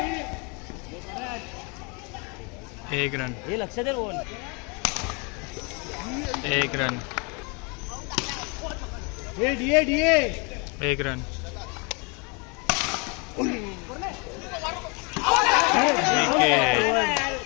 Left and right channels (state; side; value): quieter; right; 32.1 dB